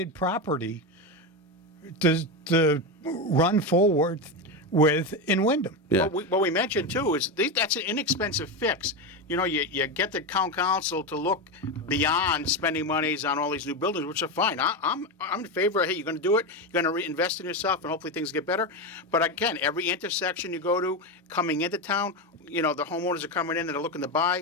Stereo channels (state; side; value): normal; both; correlation 0.14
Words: property to run forward with in Wyndham. Yeah. What we mentioned too is that's an inexpensive fix. You know, you get the town council to look beyond spending monies on all these new buildings, which are fine. I'm in favor of, hey, you're going to do it, you're going to reinvest in yourself, and hopefully things get better. But again, every intersection you go to, coming into town, you know, the homeowners are coming in and they're looking to